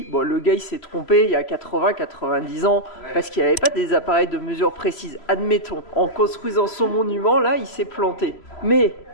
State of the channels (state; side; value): late; right; 3.0 ms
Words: bon le gars il s'est trompé il y a 80-90 ans parce qu'il n'avait pas des appareils de mesure précises. Admettons, en construisant son monument là, il s'est planté. Mais